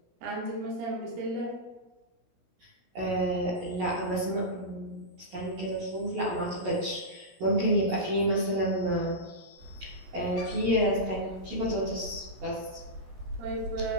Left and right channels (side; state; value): left; late; 16 ms